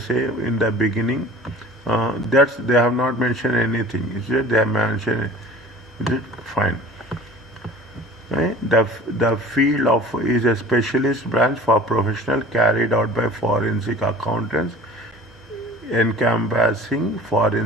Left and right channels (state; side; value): normal; both; correlation 0.44